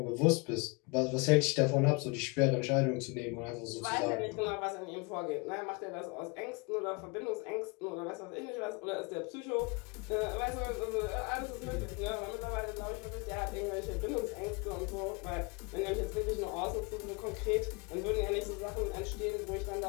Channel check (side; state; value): right; quieter; 29.2 dB